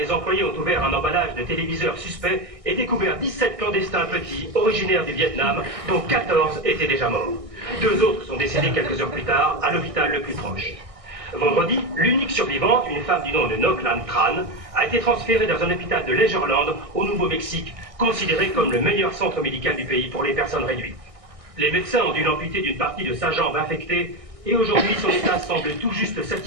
employés ont ouvert un emballage de téléviseurs suspects et découvert 17 clandestins petits, originaires du Vietnam, dont 14 étaient déjà morts. 2 autres sont décédés quelques heures plus tard, à l'hôpital le plus proche. Vendredi, l'unique survivante, une femme du nom de Noklan Tran, a été transférée dans un hôpital de Leisureland, au Nouveau-Mexique, considéré comme le meilleur centre médical du pays pour les personnes réduites. Les médecins ont dû l'amputer d'une partie de sa jambe infectée et aujourd'hui son état semble tout juste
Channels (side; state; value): left; late; 1.6 ms